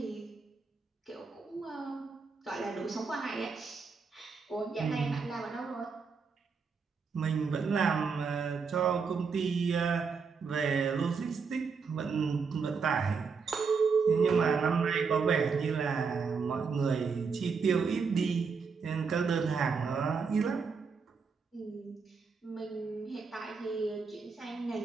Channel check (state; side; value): quieter; left; 5.3 dB